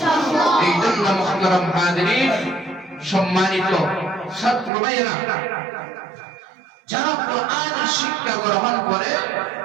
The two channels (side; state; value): left; drops out; at 4.7 s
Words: এই জন্য মুহতারাম হাজিরিন, সম্মানিত ছাত্র ভাইরা, যারা কোরআনের শিক্ষা গ্রহণ করে